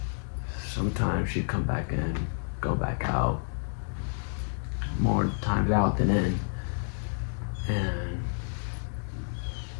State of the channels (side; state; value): right; silent; digital silence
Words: Sometimes she'd come back in, go back out, more times out than in.